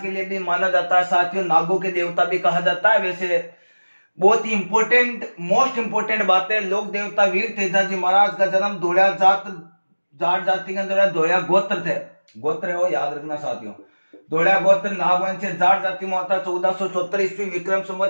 के लिए भी माना जाता है साथियों, नागों के देवता भी कहा जाता है। वैसे बहुत ही मोस्ट इंपोर्टेंट बात है, लोक देवता वीर तेजाजी महाराज का जन्म धोलिया जाट जाति के अंदर धोलिया गोत्र हो, याद रखना साथियों। धोलिया गोत्र नागवंशीय जाट जाति में होता 1474 ईस्वी विक्रम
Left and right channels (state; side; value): inverted; both; correlation -1.00